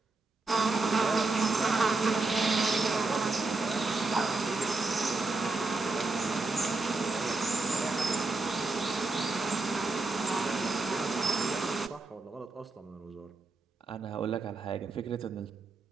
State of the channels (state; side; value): quieter; left; 3.6 dB